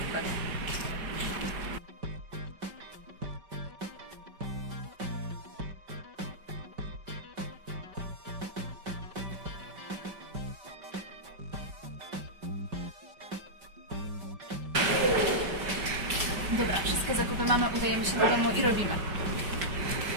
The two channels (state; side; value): late; left; 5.2 ms